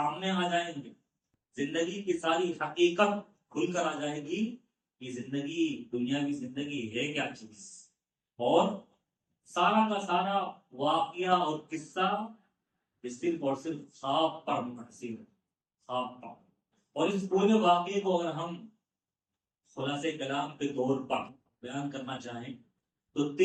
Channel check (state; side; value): identical; both; correlation 1.00